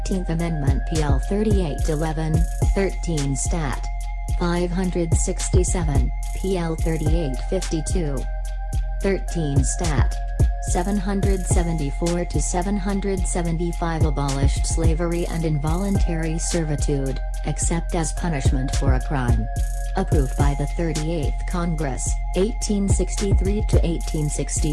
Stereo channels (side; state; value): both; identical; correlation 1.00